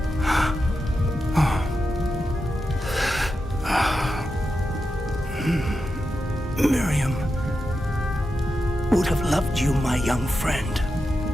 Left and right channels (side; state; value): both; normal; correlation 0.89